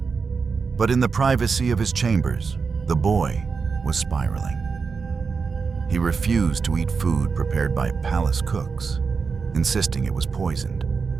But in the privacy of his chambers, the boy was spiraling. He refused to eat food prepared by palace cooks, insisting it was poisoned.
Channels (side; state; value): left; quieter; 5.2 dB